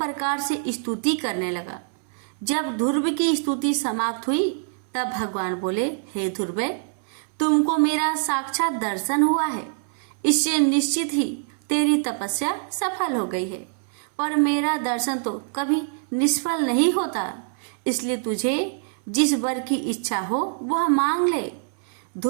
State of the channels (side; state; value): left; silent; 62 dB below the other